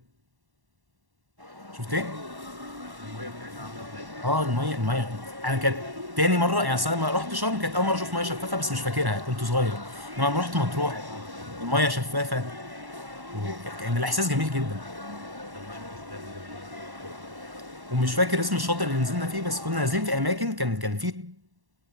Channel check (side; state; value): left; late; 1.1 ms